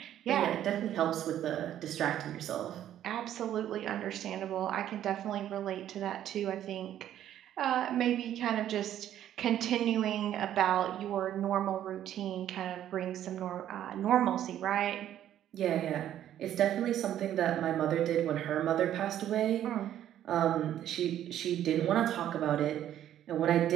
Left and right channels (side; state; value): left; quieter; 11.4 dB